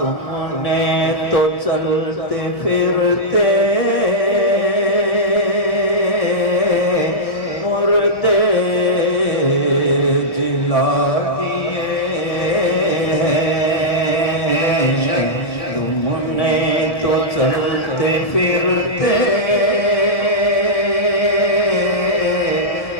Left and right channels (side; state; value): right; late; 1.7 ms